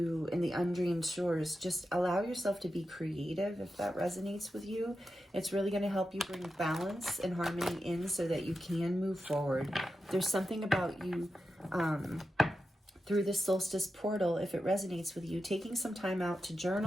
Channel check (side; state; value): both; normal; correlation 0.90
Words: in the undreamed shores, just allow yourself to be creative if that resonates with you. It's really going to help you bring balance and harmony in so that you can move forward. There's something about you through this solstice portal, if it resonates with you, taking some time out to